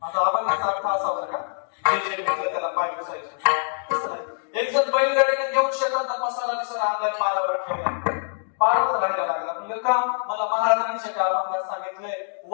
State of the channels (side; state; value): right; silent; digital silence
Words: आता अभंगाचा अर्थ असा बरं का, जे जे भेटलं त्याला पाय पुसायचे. एक जण बैलगाडीने घेऊन शेतात मसाला बिसाला आणलाय, पारावर ठेवला, पारावर राहायला लागला. म्हणजे का मला महाराजांनी त्या अभंगात सांगितलंय,